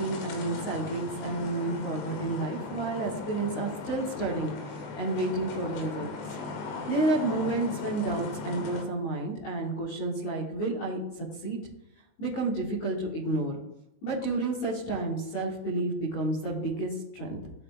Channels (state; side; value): late; right; 19 ms